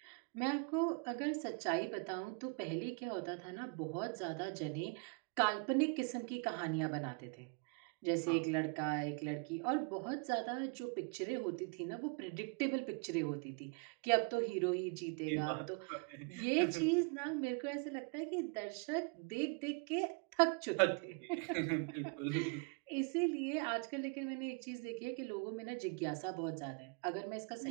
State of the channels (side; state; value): left; quieter; 35.5 dB